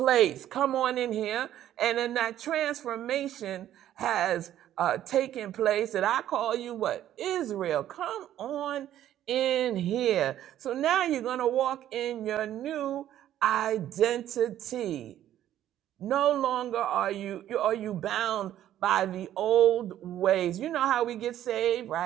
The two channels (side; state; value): left; quieter; 12.0 dB